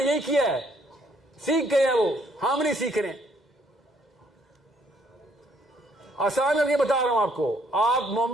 یہی کیا ہے، سیکھ گئے ہیں وہ، ہم نہیں سیکھ رہے ہیں. آسان کر کے بتا رہا ہوں آپ کو، آپ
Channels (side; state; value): both; normal; correlation 0.67